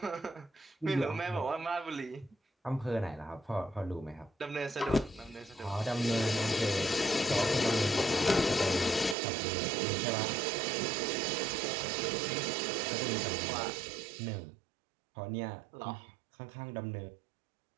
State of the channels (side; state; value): left; drops out; at 9.2 s